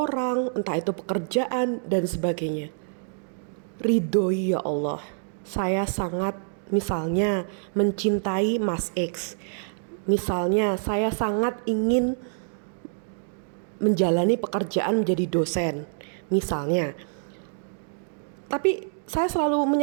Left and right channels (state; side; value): silent; left; 61 dB below the other